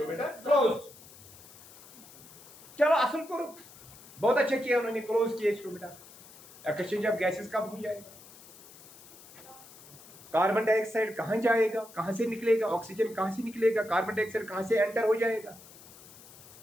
क्लोज। चलो असल कोर, बहुत अच्छा किया उन्होंने, क्लोज किया स्टोमेटा। एक्सचेंज ऑफ गैसेस कब हो जाएगा, कार्बन डाइऑक्साइड कहाँ जाएगा, कहाँ से निकलेगा, ऑक्सीजन कहाँ से निकलेगा, कार्बन डाइऑक्साइड कहाँ से एंटर हो जाएगा।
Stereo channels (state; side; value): noise; left; hiss, 20 dB below the sound